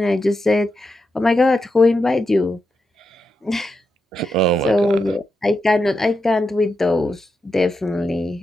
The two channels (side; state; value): both; normal; correlation 0.86